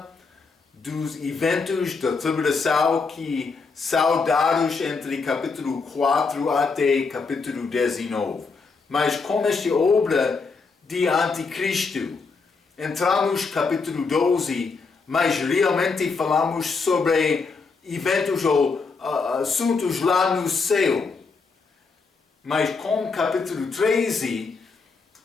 dos eventos da tribulação que são dados entre capítulo 4 até capítulo 19. Mas com esta obra de Anticristo, entramos no capítulo 12, mas realmente falamos sobre eventos ou assuntos lá no céu. Mas com o capítulo 13,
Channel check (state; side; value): quieter; right; 4.6 dB